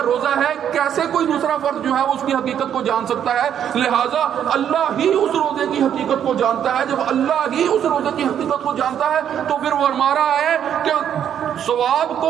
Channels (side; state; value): left; quieter; 9.3 dB